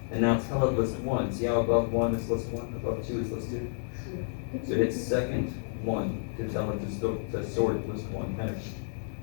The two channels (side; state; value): right; silent; 58 dB below the other